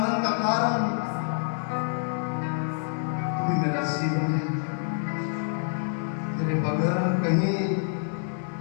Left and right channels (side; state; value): right; silent; 60 dB below the other